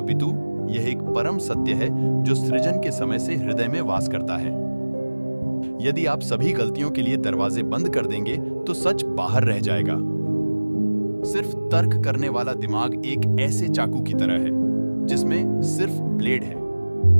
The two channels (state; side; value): inverted; both; correlation -1.00